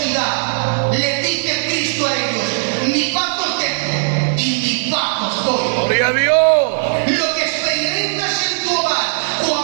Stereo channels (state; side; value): silent; left; 62 dB below the other